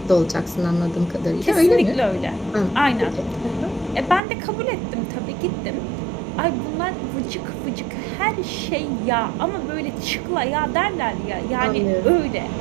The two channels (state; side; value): drops out; left; at 4.2 s